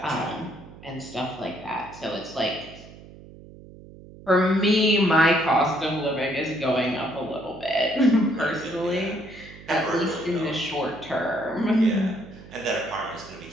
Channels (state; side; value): noise; right; hum, 19 dB below the sound